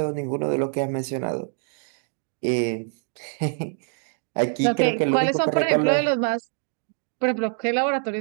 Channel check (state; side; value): silent; left; 61 dB below the other